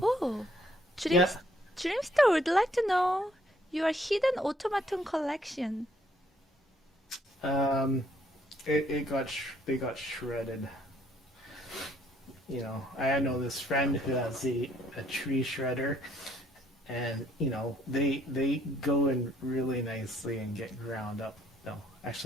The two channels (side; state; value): both; normal; correlation 0.66